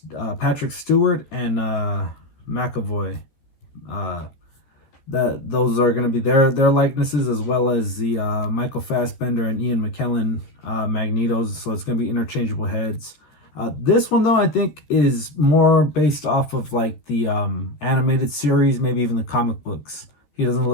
Patrick Stewart and McAvoy. Those are going to be their likenesses, as well as the Michael Fassbender and Ian McKellen Magnetos. So it's going to be interchangeable heads. This one, though, I think is more based off of like the animated series, maybe even the comic books. He doesn't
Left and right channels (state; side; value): late; right; 14 ms